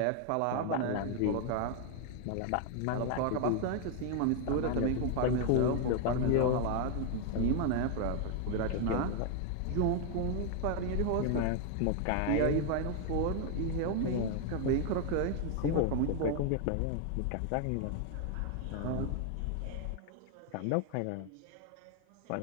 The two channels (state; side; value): different; both; correlation 0.00